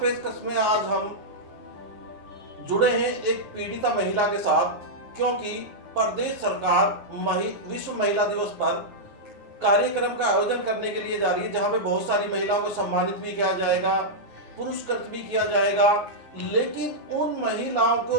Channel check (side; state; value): left; late; 9.6 ms